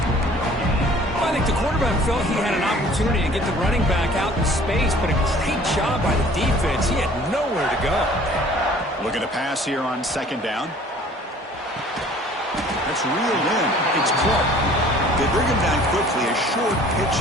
I think the quarterback felt he had an opportunity to get the running back out in space, but a great job by the defense. He had nowhere to go. Looking to pass here on second down. That's reeled in. It's Clark. They bring him down quickly. A short pitch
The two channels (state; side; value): normal; both; correlation 0.52